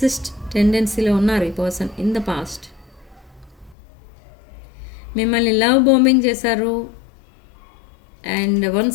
టెండెన్సీలో ఉన్నారు ఈ పర్సన్ ఇన్ ద పాస్ట్. మిమ్మల్ని లవ్ బాంబింగ్ చేశారు అండ్ వన్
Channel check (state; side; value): drops out; right; at 3.8 s